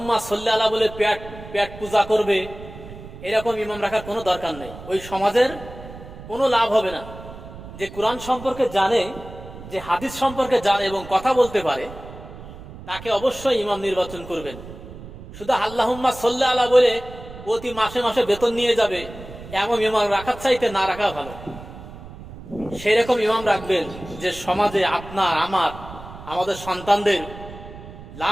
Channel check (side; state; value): right; noise; rumble, 15 dB below the sound